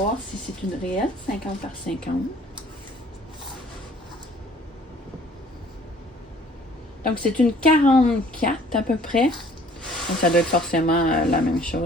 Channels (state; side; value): normal; both; correlation 0.55